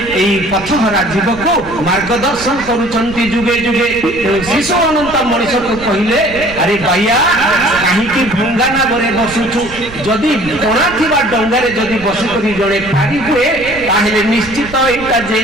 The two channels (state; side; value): noise; right; rumble, 16 dB below the sound